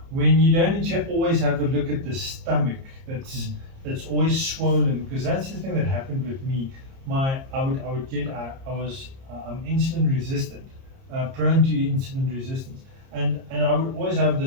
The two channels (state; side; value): late; left; 30 ms